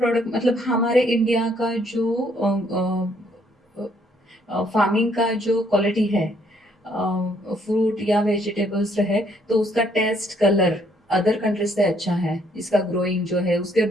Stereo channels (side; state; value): both; normal; correlation 0.68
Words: मतलब हमारे इंडिया का जो फार्मिंग का जो क्वालिटी है फ्रूट या वेजिटेबल्स है तो उसका टेस्ट कलर अदर कंट्रीज से अच्छा है। इसका ग्रोइंग जो है उसके